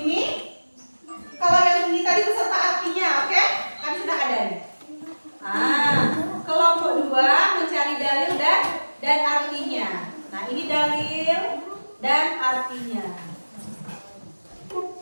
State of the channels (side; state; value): both; inverted; correlation -1.00